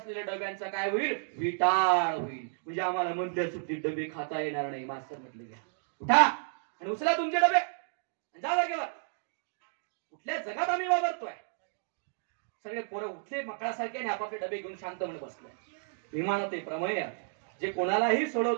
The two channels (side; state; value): left; silent; digital silence